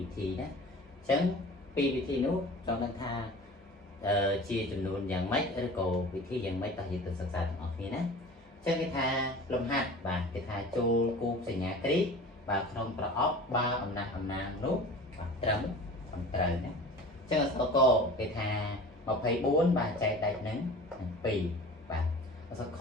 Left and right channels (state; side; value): normal; both; correlation 0.39